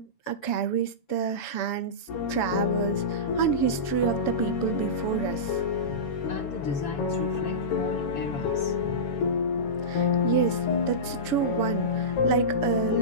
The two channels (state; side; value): late; right; 7.0 ms